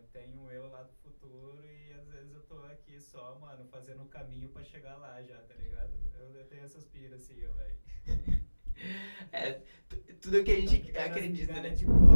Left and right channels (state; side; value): inverted; both; correlation -1.00